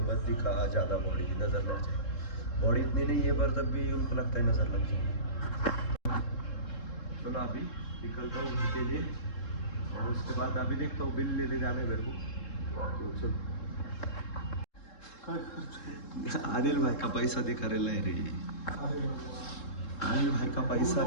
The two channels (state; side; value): late; right; 3.7 ms